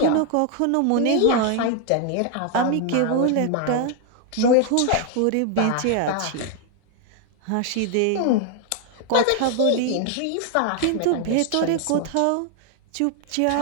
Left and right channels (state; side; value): different; both; correlation 0.01